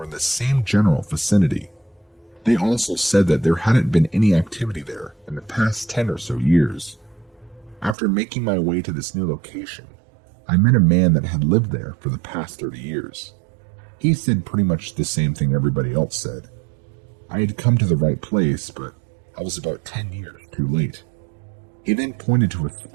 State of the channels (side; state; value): left; drops out; at 8.0 s